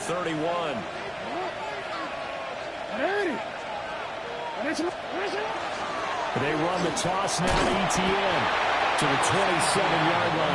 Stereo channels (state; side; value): identical; both; correlation 1.00